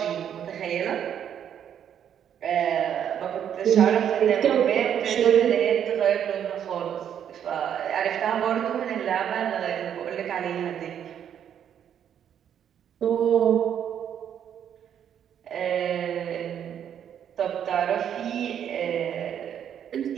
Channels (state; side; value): quieter; left; 9.2 dB